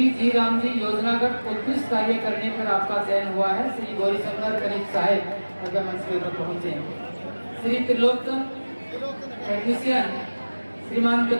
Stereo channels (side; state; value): both; inverted; correlation -1.00